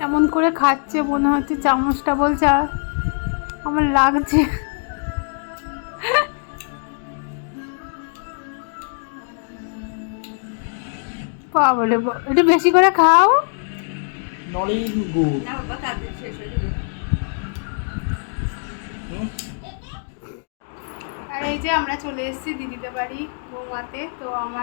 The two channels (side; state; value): right; silent; 64 dB below the other